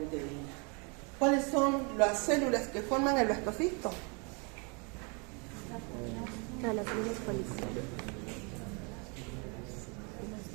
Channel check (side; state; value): left; quieter; 33.3 dB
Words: ¿Cuáles son las células que forman el blastocisto? Las células policiales.